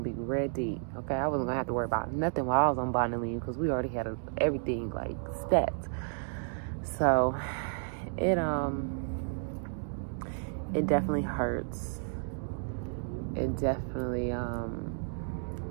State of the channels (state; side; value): silent; left; digital silence